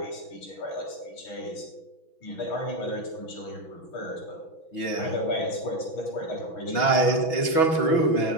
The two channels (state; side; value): late; right; 6.1 ms